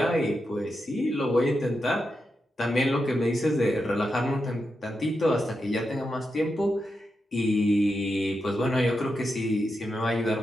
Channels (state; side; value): normal; both; correlation 0.87